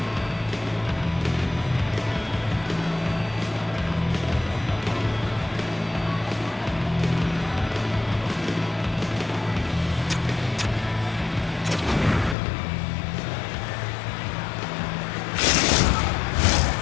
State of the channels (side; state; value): right; drops out; at 12.4 s